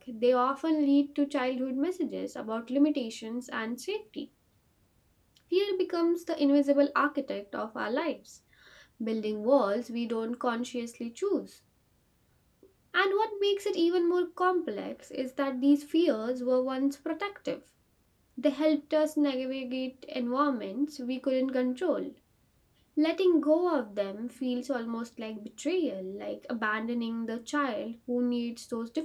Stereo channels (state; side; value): identical; both; correlation 1.00